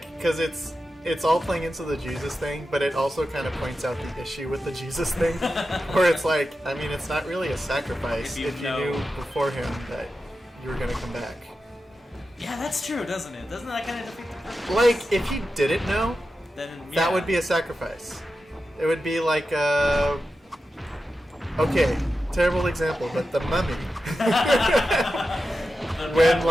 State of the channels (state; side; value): normal; both; correlation 0.91